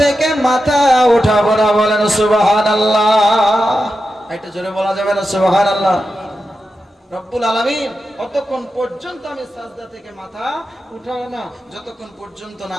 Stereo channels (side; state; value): both; normal; correlation 0.90